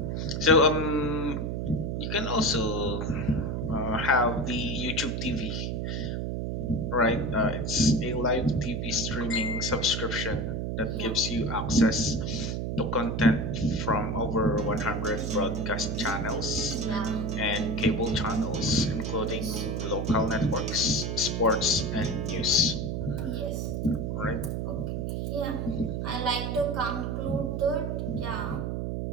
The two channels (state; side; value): noise; right; hum, 2 dB below the sound